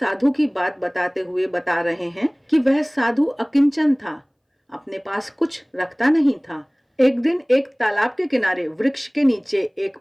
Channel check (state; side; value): identical; both; correlation 1.00